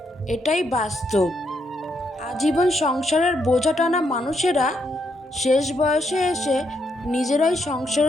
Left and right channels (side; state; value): both; normal; correlation 0.77